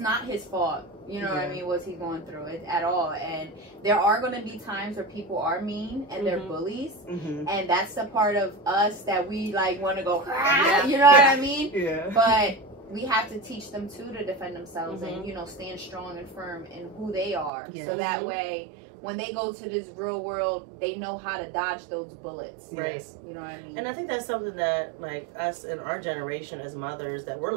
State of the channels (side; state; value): left; drops out; at 17.5 s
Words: his fault. You know what I mean? What he's going through it at all. And there are going to be times where people are mean and they're bullies, and that's the part of us that we like want to go. You know what I mean? Yeah. But we have to teach them too to defend themselves and stand strong and firm in who they are, so that way when they go to this real world, they know how to dodge those bullets. Right. You know what I mean? And I think that's something that, like, us in our generation as mothers, that we're